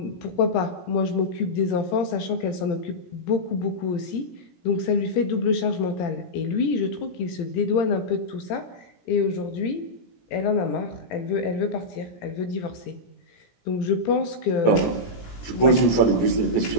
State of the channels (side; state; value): right; late; 17 ms